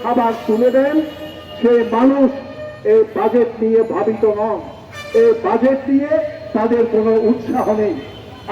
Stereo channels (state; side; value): identical; both; correlation 1.00